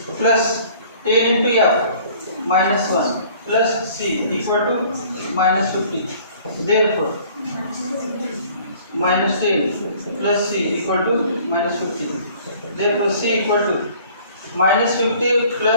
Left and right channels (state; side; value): inverted; both; correlation -0.53